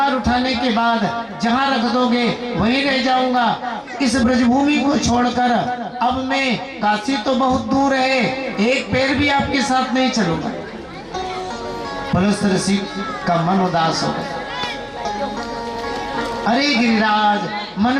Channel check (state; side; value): identical; both; correlation 1.00